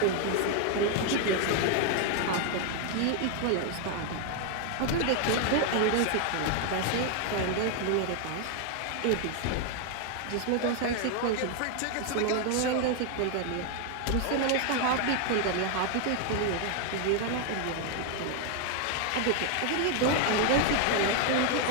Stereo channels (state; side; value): different; both; correlation 0.00